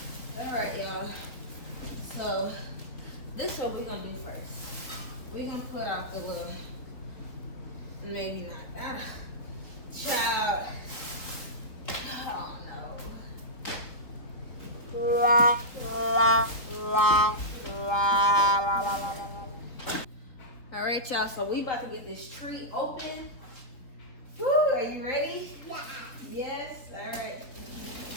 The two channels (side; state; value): right; late; 3.9 ms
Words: All right, y'all. So this is what we're gonna do first. We're gonna put out the little, maybe not. Child. Oh no. All right, y'all. So we about to get this tree open. Woo, are you ready? Yeah. Yes. All right.